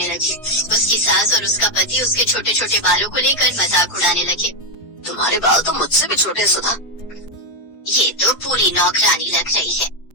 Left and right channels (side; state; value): right; late; 4.9 ms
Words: लगी। उसकी सास और उसका पति उसके छोटे छोटे बालों को लेकर मजाक उड़ाने लगे। तुम्हारे बाल तो मुझसे भी छोटे सुधा। ये तो पूरी नौकरानी लग रही है।